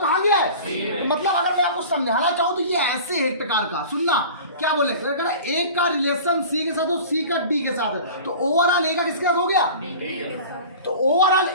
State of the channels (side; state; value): both; inverted; correlation -0.39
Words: गया है। मतलब अगर मैं आपको समझाना चाहूँ तो ये ऐसे है एक प्रकार का, सुनना क्या बोले, अगर ए का रिलेशन सी के साथ हो, सी का डी के साथ है, तो ओवरऑल ए का किसके साथ हो गया, तो ओवरऑल